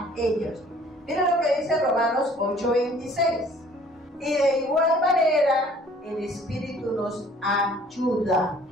ellos. Miren lo que dice Romanos 8:26. Y de igual manera el Espíritu nos ayuda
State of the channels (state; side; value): normal; both; correlation 0.55